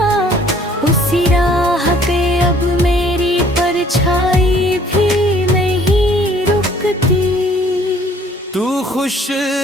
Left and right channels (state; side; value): normal; both; correlation 0.58